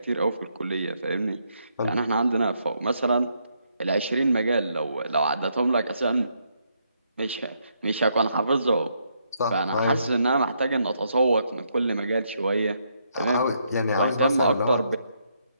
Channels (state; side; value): inverted; both; correlation -0.76